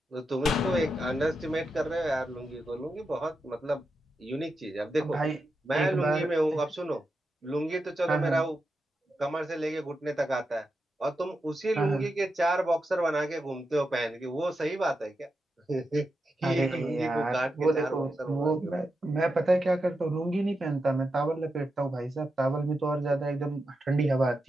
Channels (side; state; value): both; normal; correlation 0.87